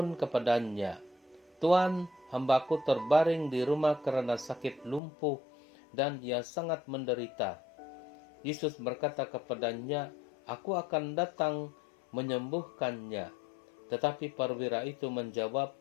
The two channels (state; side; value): drops out; right; at 5.0 s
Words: kepadanya, "Tuan, hambaku terbaring di rumah karena sakit lumpuh dan ia sangat menderita." Yesus berkata kepadanya, "Aku akan datang menyembuhkannya." Tetapi perwira itu menjawab,